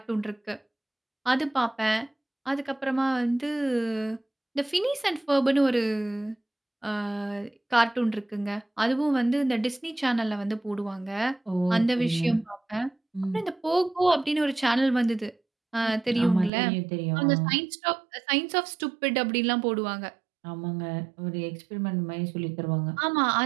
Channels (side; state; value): left; drops out; at 16.5 s